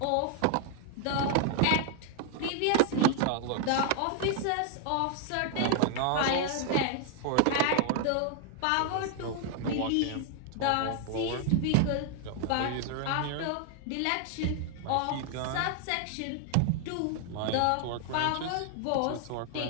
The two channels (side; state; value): both; different; correlation 0.00